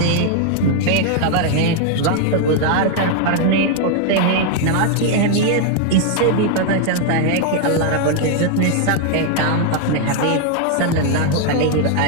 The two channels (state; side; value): different; both; correlation 0.00